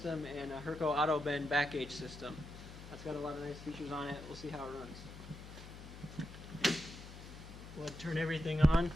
and a Herco auto bend back gauge system. That's got a lot of nice features on it. We'll see how it runs. We'll turn everything on.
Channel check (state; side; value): noise; left; hum, 14 dB below the sound